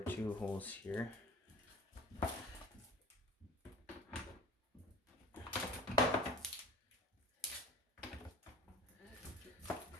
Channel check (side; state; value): both; normal; correlation 0.43